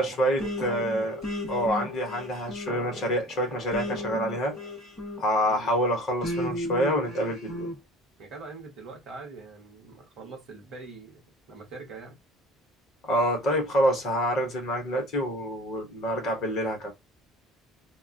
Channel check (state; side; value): normal; both; correlation 0.43